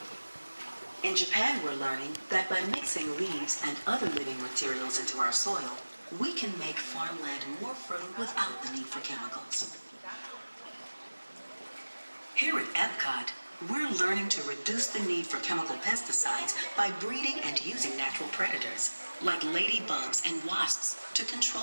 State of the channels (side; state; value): both; inverted; correlation -1.00